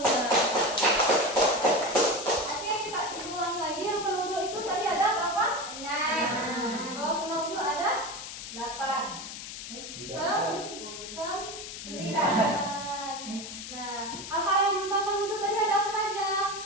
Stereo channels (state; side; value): noise; left; hiss, 9 dB below the sound